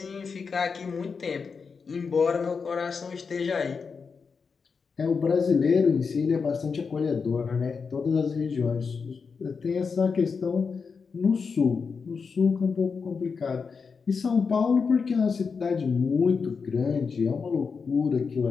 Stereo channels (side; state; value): right; quieter; 5.4 dB